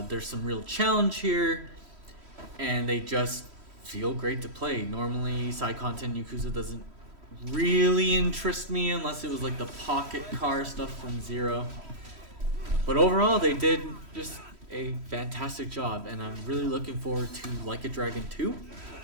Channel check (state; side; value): late; left; 3.1 ms